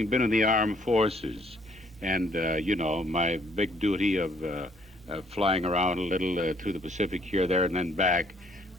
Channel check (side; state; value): both; normal; correlation 0.64